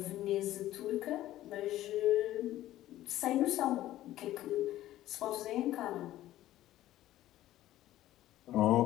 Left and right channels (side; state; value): right; quieter; 14.3 dB